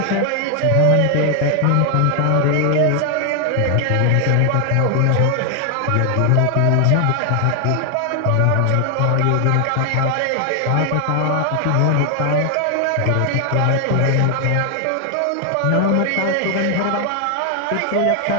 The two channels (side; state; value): both; different; correlation 0.00